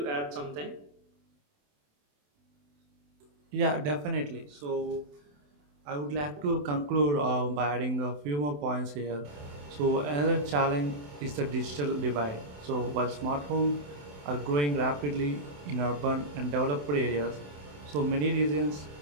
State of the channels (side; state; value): left; late; 27 ms